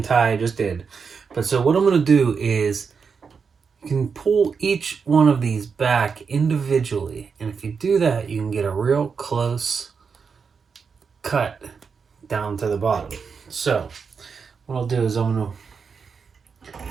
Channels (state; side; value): quieter; left; 5.7 dB